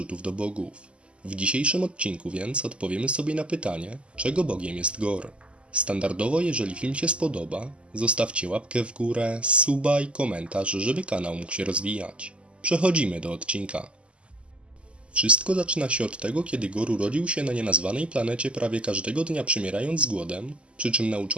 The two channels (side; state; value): left; late; 0.054 ms